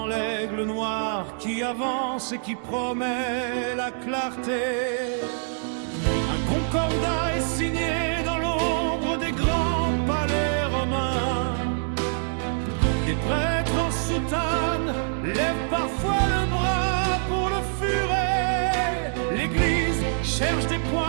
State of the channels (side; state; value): left; silent; digital silence